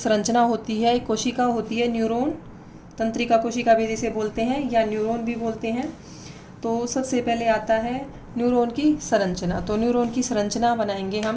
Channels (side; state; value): both; identical; correlation 1.00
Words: होती है, एक कोशिका होती है, न्यूरॉन। तंत्रिका कोशिका भी जिसे बोलते हैं, या न्यूरॉन भी बोलते हैं। तो सबसे पहले आता है न्यूरॉन की संरचना। तो न्यूरॉन की संरचना बनाएंगे